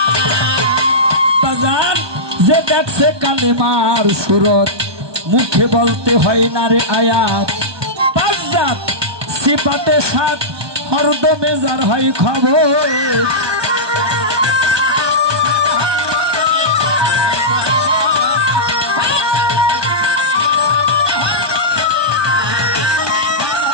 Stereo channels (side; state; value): left; late; 1.2 ms